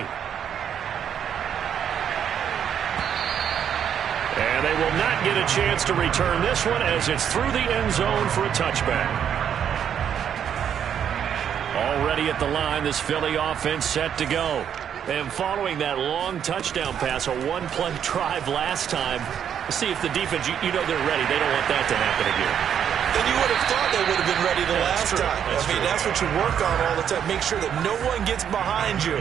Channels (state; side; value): quieter; left; 8.7 dB